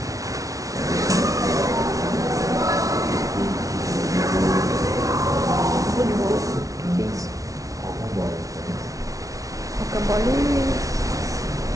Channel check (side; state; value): left; late; 0.17 ms